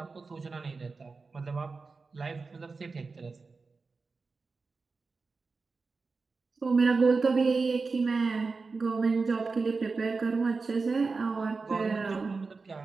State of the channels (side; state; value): left; quieter; 4.3 dB